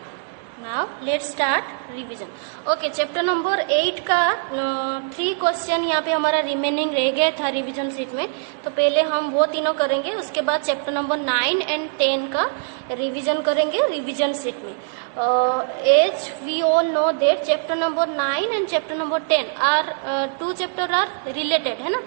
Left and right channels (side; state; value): left; silent; 62 dB below the other